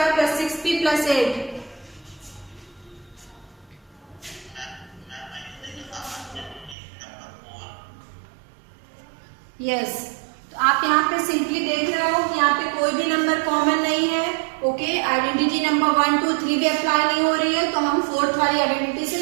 plus 6p plus 8। Yes, तो आप यहाँ पे सिंपली देख रहे हो कि यहाँ पे कोई भी नंबर कॉमन नहीं है। ओके, आइडेंटिटी नंबर 1 2 3 भी अप्लाई नहीं हो रही है, तो हम फोर्थ वाली आइडेंटिटी से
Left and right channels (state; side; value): drops out; left; at 6.8 s